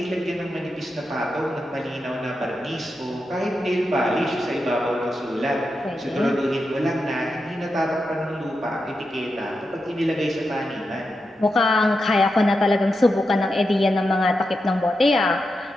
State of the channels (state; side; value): normal; both; correlation 0.88